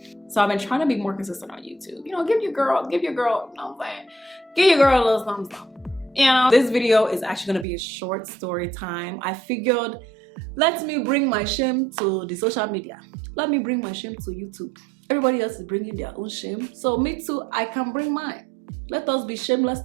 So I've been trying to be more consistent on YouTube. You know, give your girl, you know what I'm saying? Give your girl a little thumbs up. You know, this video is actually gonna be a short story time. I figured, let me bring my shame to the social media. Let me bring my shame to YouTube. Everybody else is bringing their own shame. So me too, I can bring mine. Let us be shameless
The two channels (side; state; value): left; drops out; at 7.7 s